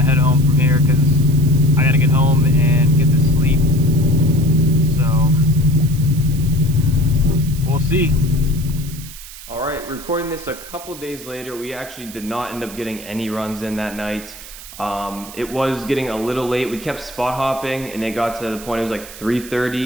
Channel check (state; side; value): noise; right; hiss, 15 dB below the sound